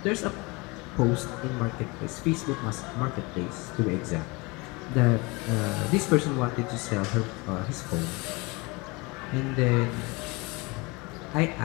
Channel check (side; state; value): right; quieter; 26.2 dB